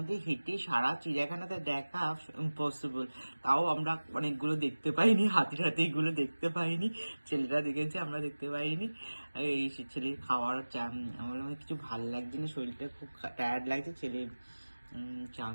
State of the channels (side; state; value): both; inverted; correlation -1.00